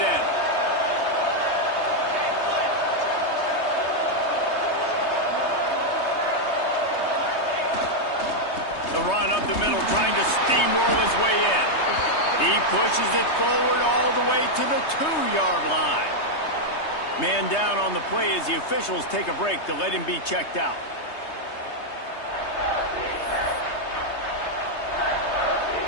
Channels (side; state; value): right; late; 3.2 ms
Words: The run up the middle, trying to steamroll his way in. He pushes it forward all the way to the 2-yard line. Man down on the play as the officials take a break to let him be checked out.